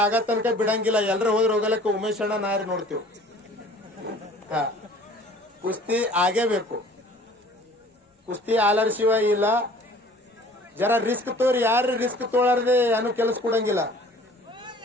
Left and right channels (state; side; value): normal; both; correlation 0.50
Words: ಆಗ ತನಕ ಬಿಡಂಗಿಲ್ಲ. ಎಲ್ರ ಹೋದ್ರ ಹೋಗಲಕ್ಕ ಉಮೇಶ್ ಅಣ್ಣ ನಾರಿ ನೋಡ್ತೀವಿ. ಹಾ, ಕುಸ್ತಿ ಆಗೇಬೇಕು. ಕುಸ್ತಿ ಆಲರ್ ಶಿವ ಇಲ್ಲ. ಜರ ರಿಸ್ಕ್ ತೋರಿ. ಯಾರು ರಿಸ್ಕ್ ತೋಳಾರ್ದೆ ಏನು ಕೆಲಸ ಕೊಡಂಗಿಲ್ಲ.